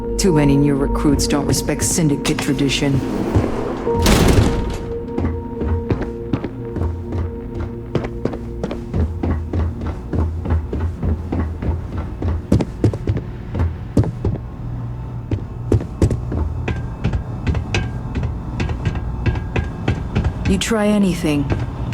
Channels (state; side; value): identical; both; correlation 1.00